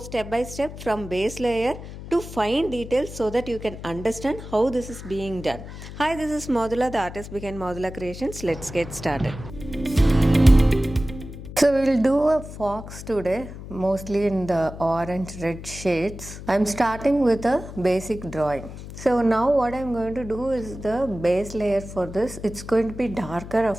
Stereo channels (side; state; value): left; noise; hum, 12 dB below the sound